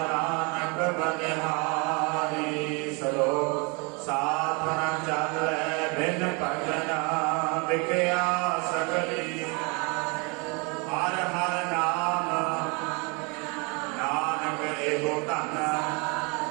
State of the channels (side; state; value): left; quieter; 31.3 dB